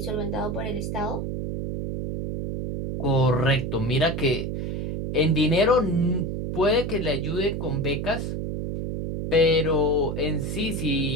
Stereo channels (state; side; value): noise; right; hum, 3 dB below the sound